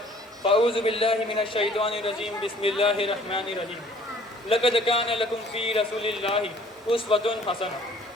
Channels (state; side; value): normal; both; correlation 0.54